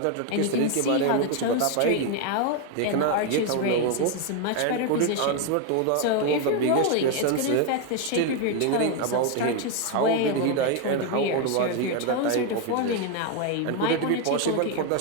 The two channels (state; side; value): different; both; correlation 0.01